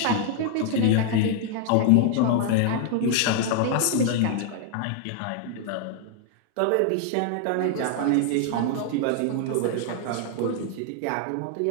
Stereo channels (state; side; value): different; both; correlation 0.00